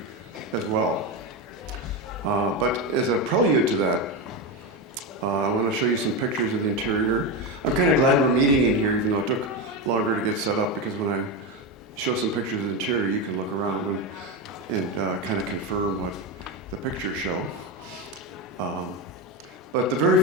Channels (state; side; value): normal; both; correlation 0.14